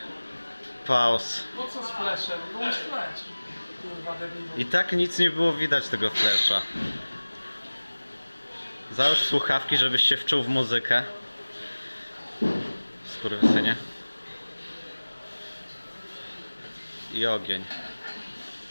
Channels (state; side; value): inverted; both; correlation -1.00